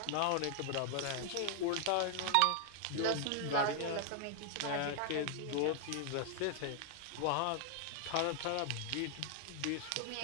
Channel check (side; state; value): both; different; correlation 0.00